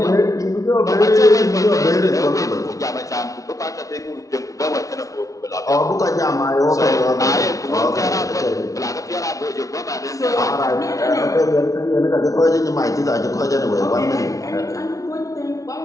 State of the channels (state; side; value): late; right; 0.16 ms